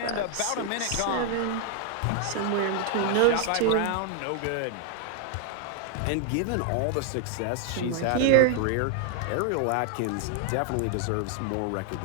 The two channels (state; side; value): different; both; correlation 0.00